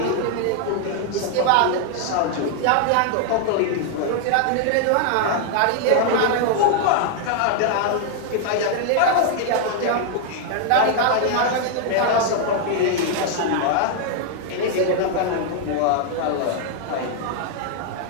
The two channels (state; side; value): different; both; correlation 0.00